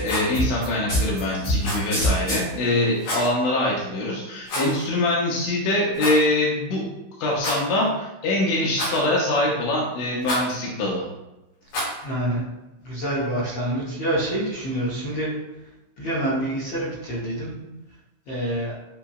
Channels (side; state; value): right; late; 15 ms